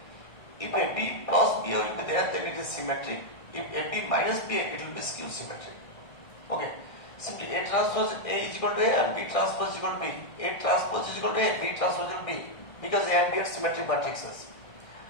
If AB plus BA will be there, then it is symmetric. If AB minus BA, it will be skew symmetric. Okay. Simply A transpose A is equal to A and B transpose is equal to B. A transpose is equal to A, B transpose is equal to B. Because A and B are symmetric matrices.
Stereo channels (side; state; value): right; late; 1.6 ms